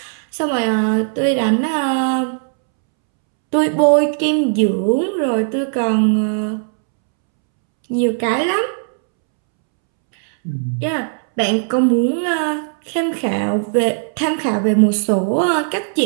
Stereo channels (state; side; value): silent; left; 68 dB below the other